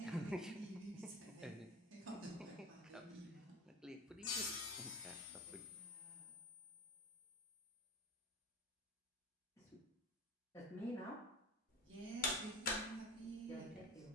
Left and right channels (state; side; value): normal; both; correlation 0.33